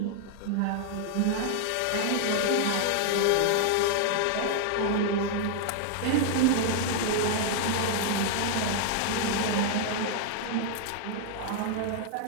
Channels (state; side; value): different; both; correlation 0.00